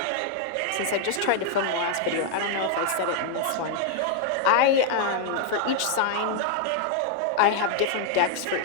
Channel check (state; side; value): different; both; correlation 0.00